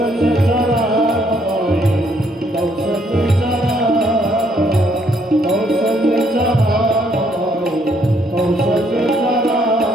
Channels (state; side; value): normal; both; correlation 0.69